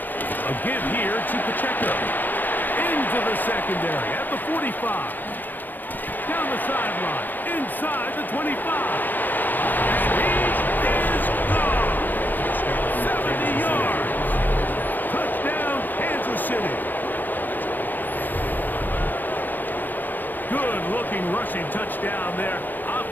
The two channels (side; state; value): right; late; 0.087 ms